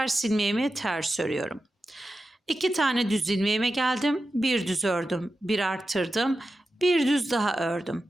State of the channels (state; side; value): normal; both; correlation 0.92